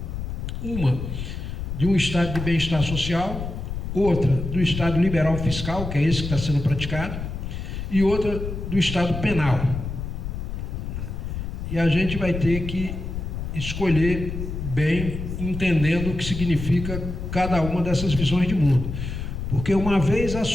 Uma de um estado de bem-estar social, outra do estado liberal fiscal, que é esse que está sendo praticado, e outra do estado penal. E a gente vai ter que escolher bem, entendendo o que significa cada uma dessas visões de mundo. Porque uma vez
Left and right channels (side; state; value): left; noise; rumble, 5 dB below the sound